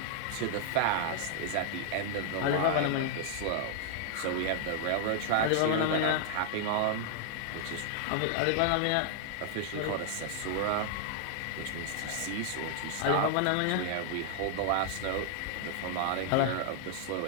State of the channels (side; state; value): both; different; correlation 0.00